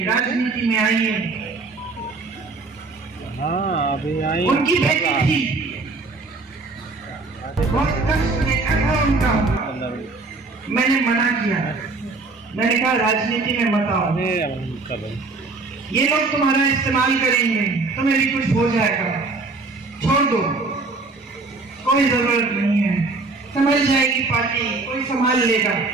राजनीति में आइए। अभी आई उनकी बेटी थी, बहुत कष्ट देखा था उनका। मैंने मना किया, मैंने कहा राजनीति में मत आओ, ये लोग तुम्हारा इस्तेमाल करेंगे, तुम्हें भी कुछ हो जाएगा, छोड़ दो, कोई जरूरत नहीं है, समझ जाएगी पार्टी, कोई संभाल लेगा,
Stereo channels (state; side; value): quieter; left; 3.7 dB